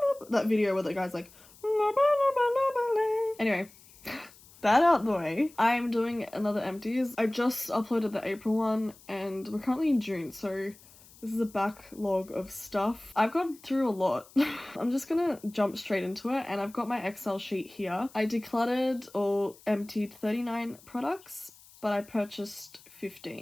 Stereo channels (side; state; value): left; noise; hiss, 24 dB below the sound